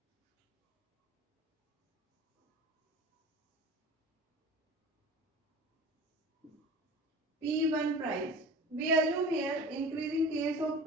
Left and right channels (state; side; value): normal; both; correlation 0.38